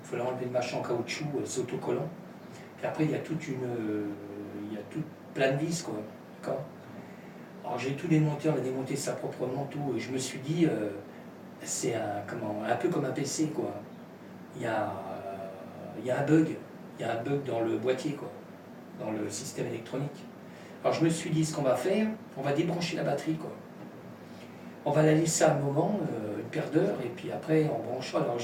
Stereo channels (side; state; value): both; identical; correlation 1.00